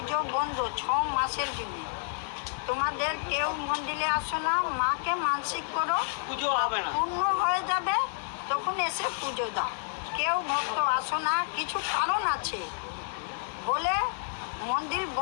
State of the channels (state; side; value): silent; right; digital silence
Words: বন্ধ 6 মাসের জন্য। তোমাদের কেউ মন্দিরে আসো না, মাকে মানসিক করো, পুজো হবে না। পূর্ণ হয়ে যাবে, তখন এসে পুজো দাও। কেউ ভক্ত আসো না, কিছু কারণ আছে বলে মন্দির